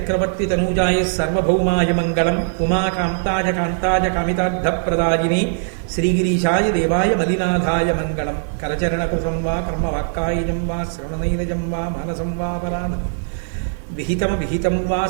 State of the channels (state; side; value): silent; left; digital silence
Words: తనూజాయ సర్వభౌమాయ మంగళం. ఉమాకాంతాయ కాంతాయ కామితార్థప్రదాయినే శ్రీగిరీశాయ దేవాయ మలినాథాయ మంగళం. కరచరణకుశం వా కర్మవాక్కాయజం వా శ్రవణనైనజం వా మానసం వా పరాణం విహితం వా